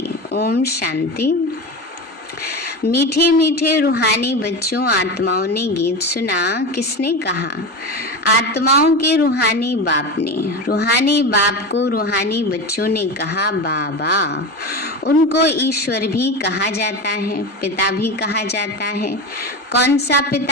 ओम शांति। मीठे मीठे रूहानी बच्चों, आत्माओं ने गीत सुना। किसने कहा? आत्माओं के रूहानी बाप ने। रूहानी बाप को रूहानी बच्चों ने कहा बाबा। उनको ईश्वर भी कहा जाता है, पिता भी कहा जाता है। कौन सा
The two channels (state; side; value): normal; both; correlation 0.24